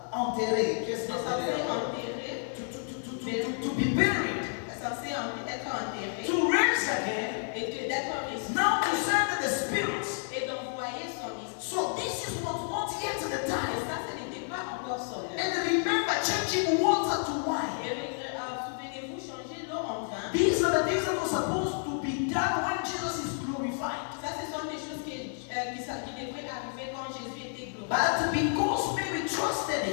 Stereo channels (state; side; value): silent; right; 57 dB below the other